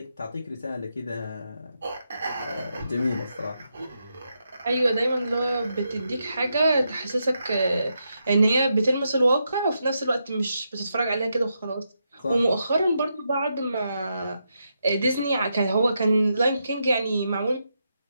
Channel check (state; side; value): inverted; both; correlation -0.83